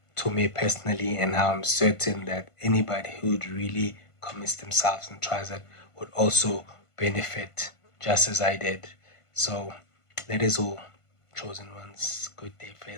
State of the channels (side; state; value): right; late; 1.5 ms